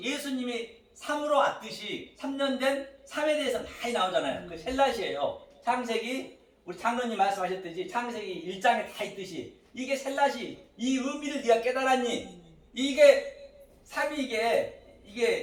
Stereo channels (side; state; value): both; identical; correlation 1.00